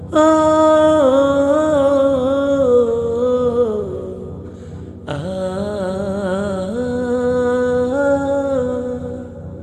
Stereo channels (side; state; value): both; identical; correlation 1.00